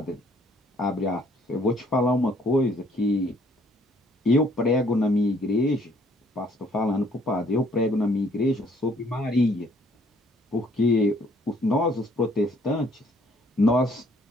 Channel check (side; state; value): both; normal; correlation 0.63